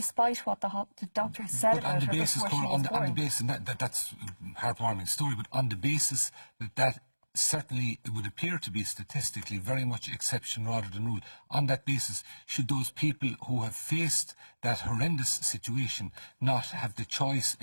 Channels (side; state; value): both; inverted; correlation -1.00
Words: what the doctors said about her before she was born. On the basis, and that's a heartwarming story, but on the basis that certainly it would appear to be statistically very much exception rather than rule. On that basis, should those people who have faced that horrendous situation not have the choice